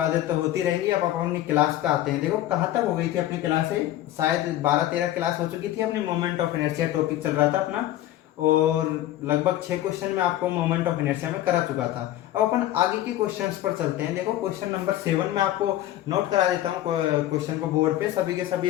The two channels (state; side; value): quieter; right; 13.9 dB